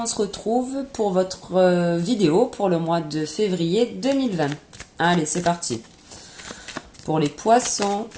se retrouve pour votre vidéo pour le mois de février 2020. Allez, c'est parti. Pour les poissons,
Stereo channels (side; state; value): both; identical; correlation 1.00